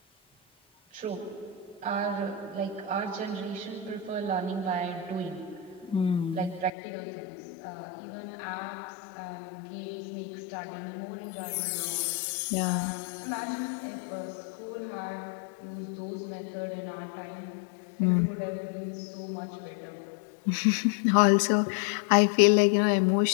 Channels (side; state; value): right; drops out; at 6.7 s